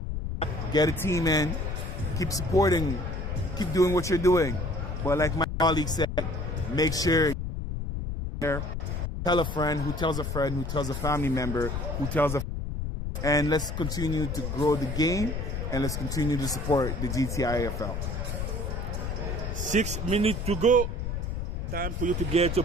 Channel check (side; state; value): left; noise; rumble, 3 dB below the sound